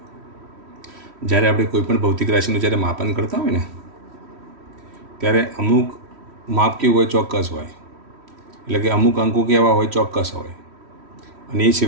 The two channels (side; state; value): left; late; 3.1 ms